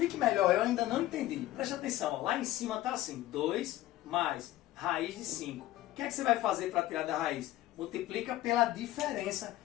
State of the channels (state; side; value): quieter; right; 15.4 dB